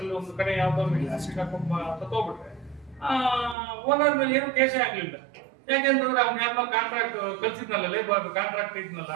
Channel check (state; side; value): drops out; left; at 3.6 s